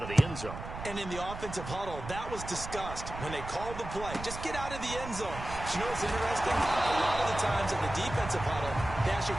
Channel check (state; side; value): noise; right; rumble, 10 dB below the sound